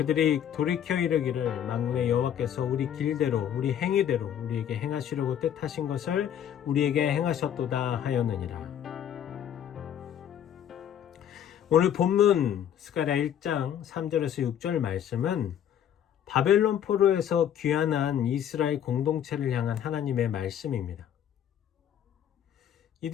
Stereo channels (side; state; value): right; quieter; 9.7 dB